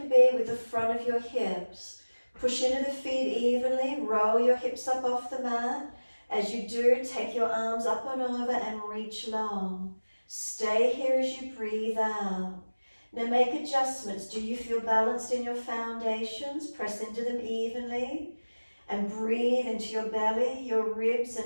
be with the front of your hips. Push into the feet evenly, roll your hips up off the mat. As you do, take your arms up and over and reach long. Stay here as you breathe out. Now make adjustments. Do you feel balanced in your foundations? Press into them evenly. And breathe into your belly, your ribs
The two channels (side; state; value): both; inverted; correlation -1.00